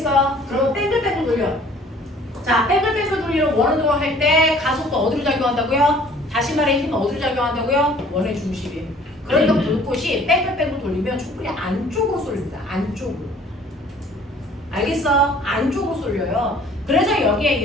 그러면 뺑글뺑글 돌려. 자, 뺑글뺑글 돌리는 원으로 할 때 가속도 어디로 작용한다고요? 다시 말해 힘은 어디로 작용한다고요? 원의 중심이. 그러니까 불꽃이 뺑글뺑글 돌리면 촛불이 안쪽으로 쏠립니다. 안쪽으로. 알겠어? 안쪽으로 쏠려요. 그래서 여기에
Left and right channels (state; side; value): normal; both; correlation 0.53